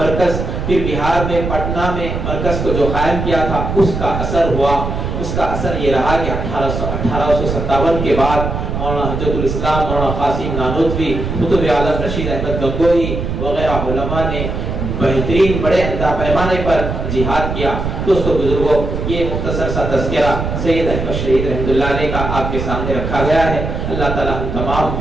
پھر بہار میں پٹنہ میں مرکز کو جو قائم کیا تھا، اس کا اثر ہوا۔ اس کا اثر یہ رہا کہ 1857 کے بعد مولانا حجت الاسلام، مولانا قاسم نانوتوی، قطب عالم رشید احمد گنگوہی وغیرہ علماء نے بہترین بڑے پیمانے پر جہاد کیا۔ دوستو بزرگوں، یہ مختصر سا تذکرہ سید احمد شہید رحمۃ اللہ علیہ کا آپ کے سامنے رکھا گیا ہے۔ اللہ تعالی ہم تمام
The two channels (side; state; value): right; noise; rumble, 3 dB below the sound